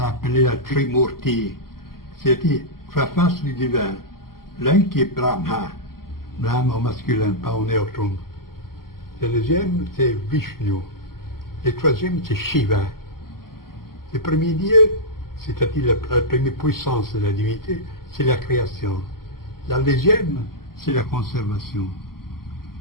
appelée la Trimurti, c'est-à-dire trois faces du divin. L'un qui est Brahma au masculin, pas au neutrum. Le deuxième, c'est Vishnu. Le troisième, c'est Shiva. Le premier Dieu, c'est-à-dire la première puissance de la divinité, c'est la création. La deuxième, c'est la conservation.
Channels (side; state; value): right; late; 0.93 ms